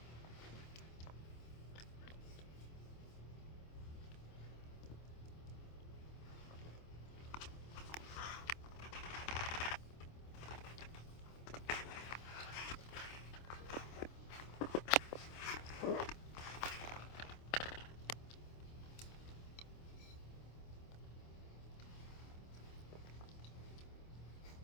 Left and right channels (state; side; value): late; right; 26 ms